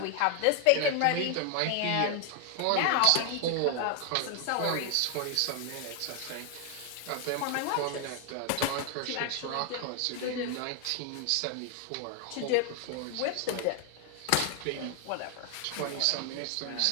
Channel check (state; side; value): different; both; correlation 0.00